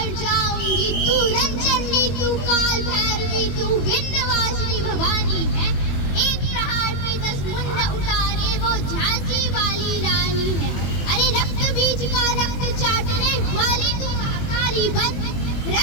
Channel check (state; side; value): late; right; 21 ms